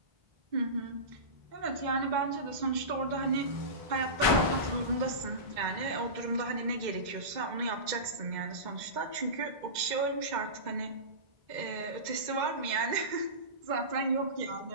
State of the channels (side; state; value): left; late; 2.1 ms